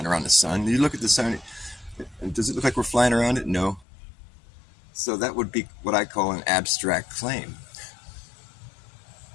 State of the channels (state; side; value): drops out; right; at 3.9 s